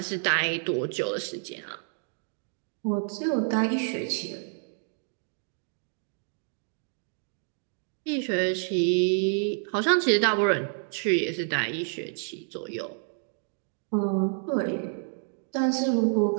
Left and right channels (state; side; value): silent; left; digital silence